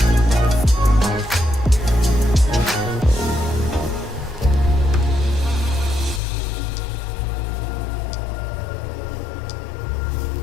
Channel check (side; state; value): right; drops out; at 6.2 s